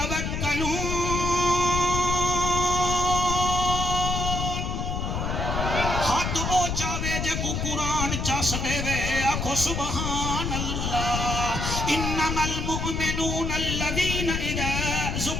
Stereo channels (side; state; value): left; noise; rumble, 2 dB below the sound